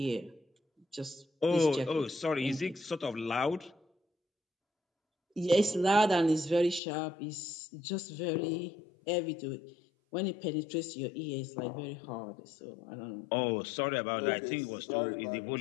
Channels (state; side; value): drops out; right; at 6.8 s